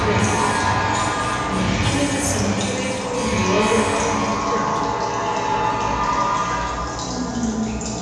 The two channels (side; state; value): both; identical; correlation 1.00